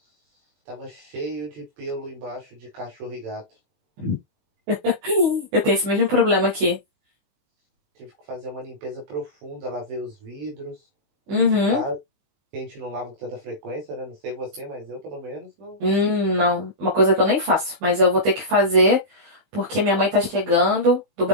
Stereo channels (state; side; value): late; left; 20 ms